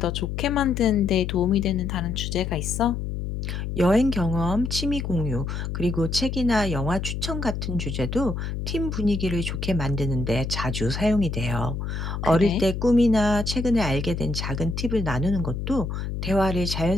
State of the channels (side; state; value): left; noise; hum, 4 dB below the sound